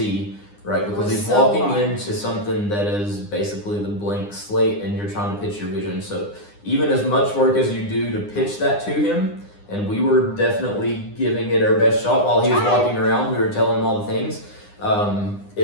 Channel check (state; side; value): late; right; 9.8 ms